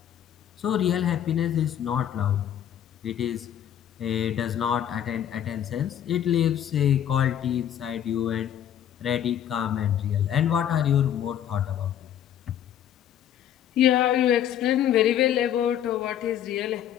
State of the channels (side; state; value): right; quieter; 10.3 dB